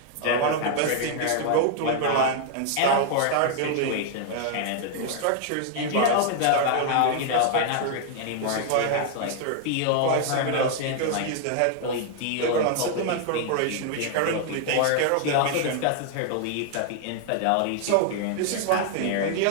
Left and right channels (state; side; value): different; both; correlation 0.00